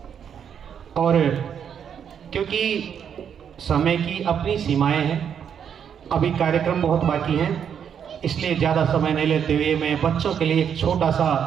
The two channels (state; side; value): quieter; left; 8.1 dB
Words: और क्योंकि समय की अपनी सीमाएं हैं, अभी कार्यक्रम बहुत बाकी हैं, इसलिए ज़्यादा समय नहीं लेते हुए मैं बच्चों के लिए एक छोटा सा